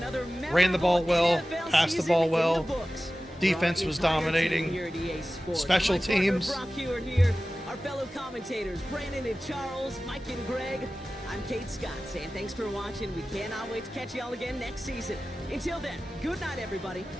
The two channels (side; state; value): both; normal; correlation 0.95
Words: Ran the ball well, NFL passed the season ball in well. the books. Defense Our was entire team dominating. here at EA Sports. Special My partner teams. Brock Hewitt here. our fellow commentators, Brandon and Charles, Mike and Greg. I'm Kate Scott saying thanks for watching. We cannot wait to catch y'all again next season. Until then, good night, everybody.